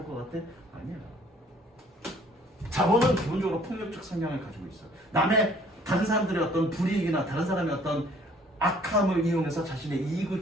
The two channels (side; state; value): both; normal; correlation 0.58